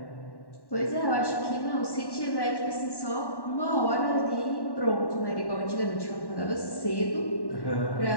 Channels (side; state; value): right; late; 1.1 ms